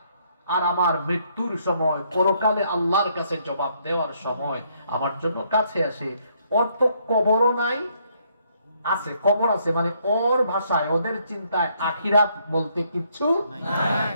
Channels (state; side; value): inverted; both; correlation -0.70